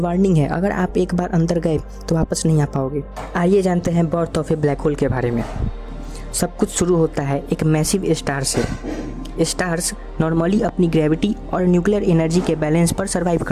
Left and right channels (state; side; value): identical; both; correlation 1.00